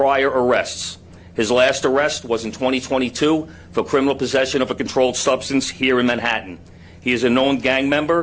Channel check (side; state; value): both; identical; correlation 1.00